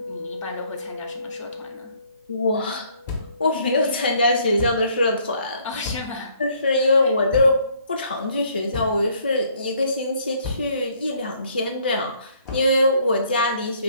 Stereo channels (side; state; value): both; inverted; correlation -0.64